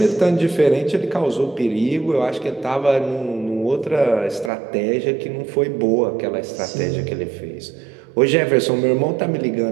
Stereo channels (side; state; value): left; drops out; at 4.5 s